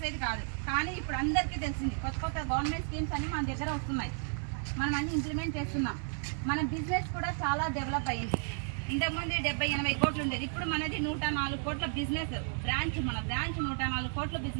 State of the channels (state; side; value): silent; left; 56 dB below the other